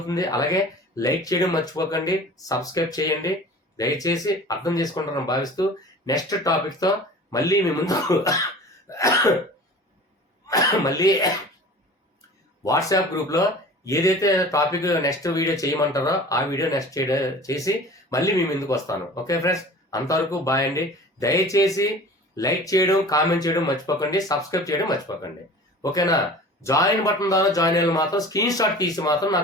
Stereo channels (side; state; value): both; normal; correlation 0.41